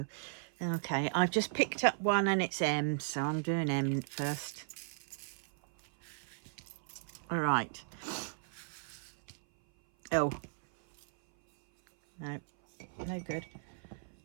Okay, I've just picked up one and it's M, so I'm doing M first. All right. Oh. No, no good.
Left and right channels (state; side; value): silent; left; 54 dB below the other